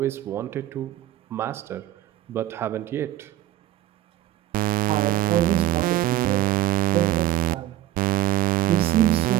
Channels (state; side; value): quieter; left; 14.1 dB